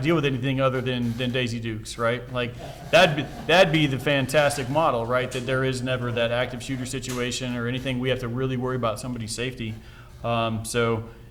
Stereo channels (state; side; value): identical; both; correlation 1.00